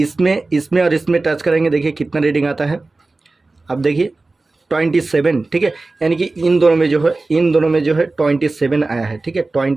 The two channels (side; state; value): left; quieter; 3.4 dB